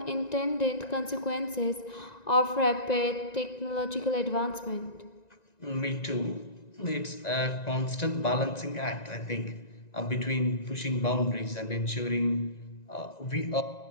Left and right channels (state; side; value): late; right; 1.9 ms